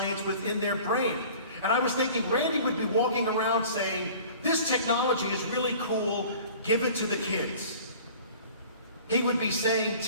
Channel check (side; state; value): both; inverted; correlation -0.45